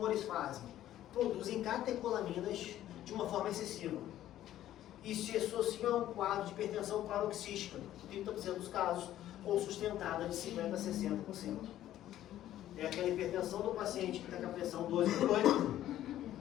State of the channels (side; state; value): right; quieter; 12.8 dB